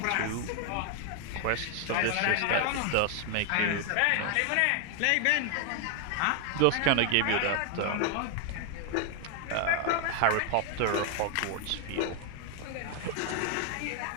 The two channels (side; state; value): both; different; correlation 0.00